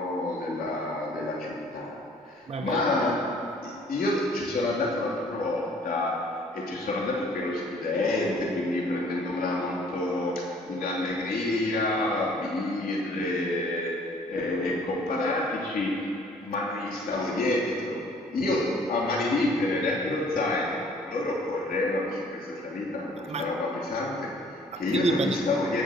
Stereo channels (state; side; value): normal; both; correlation 0.57